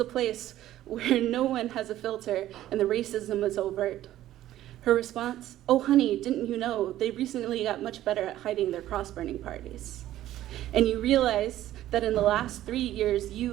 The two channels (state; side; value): quieter; left; 13.6 dB